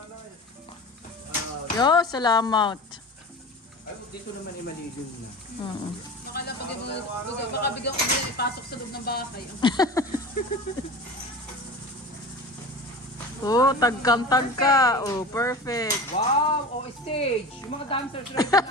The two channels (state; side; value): normal; both; correlation 0.33